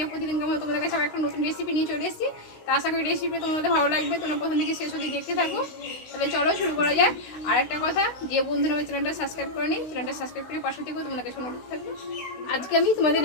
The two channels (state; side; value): late; right; 16 ms